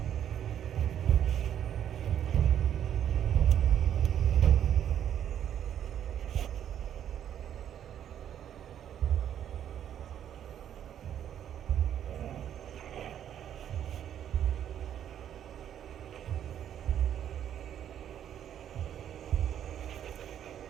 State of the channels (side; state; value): left; quieter; 9.9 dB